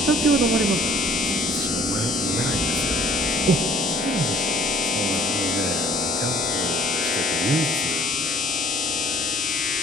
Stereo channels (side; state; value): both; normal; correlation 0.53